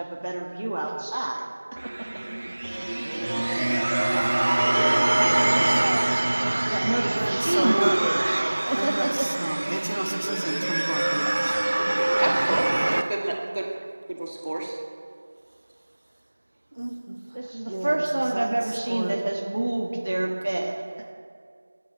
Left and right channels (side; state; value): both; inverted; correlation -1.00